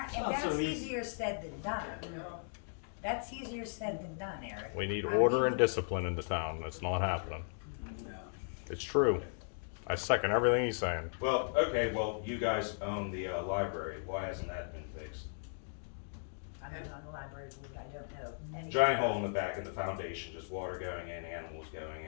that's so easy. easier said than done. That's easier said than done, Eric. We need order and discipline in the town. It's not happening. It's true. I second everything he's saying. Well, okay, well, you guys own the library. Why hasn't that been fixed? I'm not on the library board, I don't know. anything. Giant hole in the back of the foundation, just water going in, animals going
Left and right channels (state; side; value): silent; right; digital silence